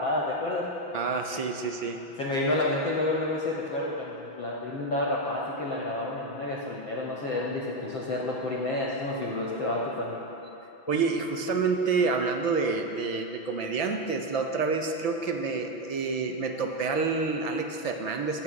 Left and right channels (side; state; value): right; late; 6.0 ms